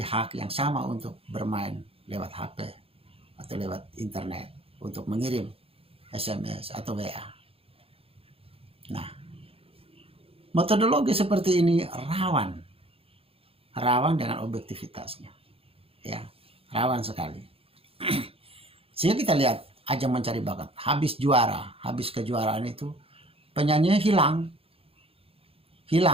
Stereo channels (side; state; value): left; late; 0.27 ms